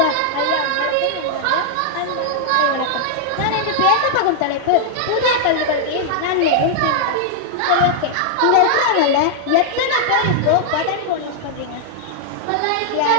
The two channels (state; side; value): different; both; correlation -0.01